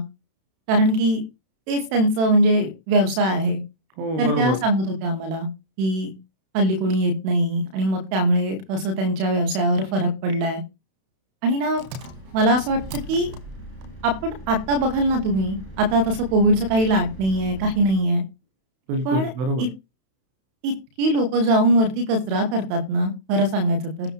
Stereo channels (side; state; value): left; late; 32 ms